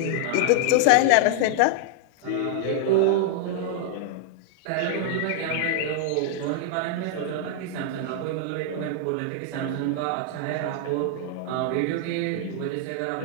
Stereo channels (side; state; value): both; different; correlation 0.00